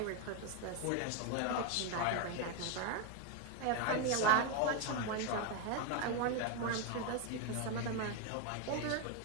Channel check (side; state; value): both; different; correlation 0.01